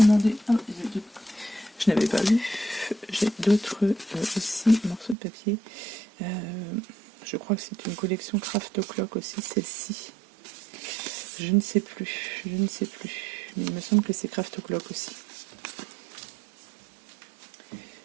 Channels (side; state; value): left; drops out; at 5.2 s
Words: Ah, je n'avais pas vu. J'ai d'autres aussi morceaux de papier. Je crois que c'est une collection Craft O'Clock aussi, celle-ci. Je ne sais plus, mais il me semble que c'est Craft O'Clock aussi.